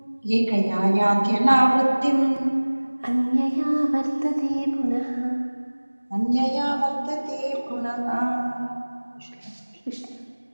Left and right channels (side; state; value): both; inverted; correlation -1.00